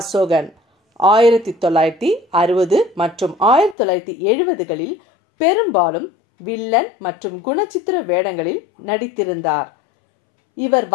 1960 மற்றும் 1970களில் பெரும்பாலும் வில்லன் மற்றும் குணச்சித்திர வேடங்களில் நடித்திருந்தார். இவர்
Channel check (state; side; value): drops out; right; at 3.8 s